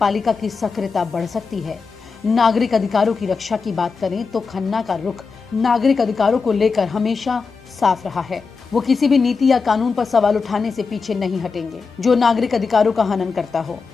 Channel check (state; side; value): quieter; right; 4.9 dB